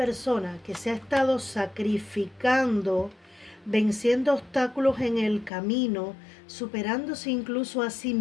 que se ha estado sacrificando, venciendo obstáculos en el camino, superándose incluso a sí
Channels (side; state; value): right; drops out; at 5.5 s